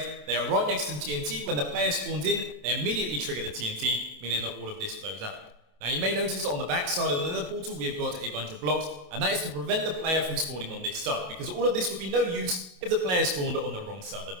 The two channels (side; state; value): left; late; 27 ms